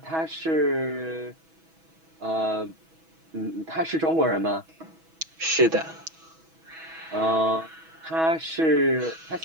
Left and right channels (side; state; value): left; late; 6.2 ms